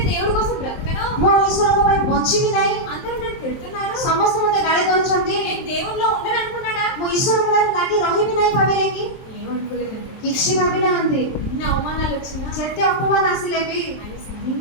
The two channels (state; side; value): late; right; 23 ms